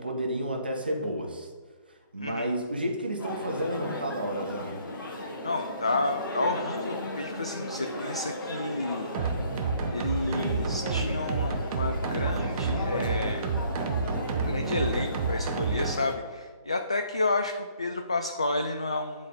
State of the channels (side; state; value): both; inverted; correlation -0.63